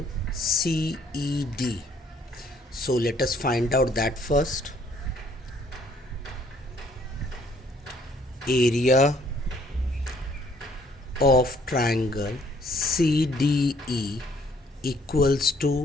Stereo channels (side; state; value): both; normal; correlation 0.63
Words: CED. So let us find out that first. Area of triangle CDE equals